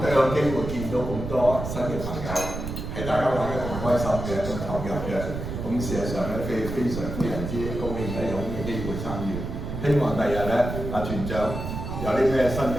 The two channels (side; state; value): right; noise; rumble, 6 dB below the sound